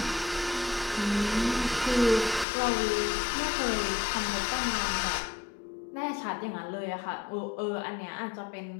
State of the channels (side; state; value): right; drops out; at 2.5 s